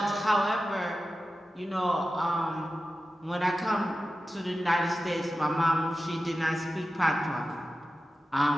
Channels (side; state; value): both; normal; correlation 0.93